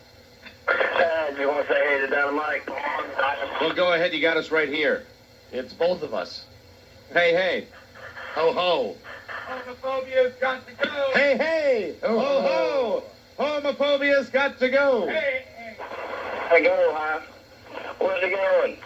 You want to say hey to Don and Mike? Well, go ahead. You got us right here. It's both of us. Hey, hey. Ho, ho. Homophobia's got to go. Hey, hey. Ho, ho. Homophobia's got to go. Hey, I go, huh? Where's it going?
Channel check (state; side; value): identical; both; correlation 1.00